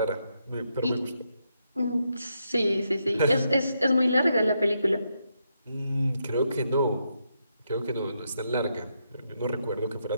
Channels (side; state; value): both; inverted; correlation -0.81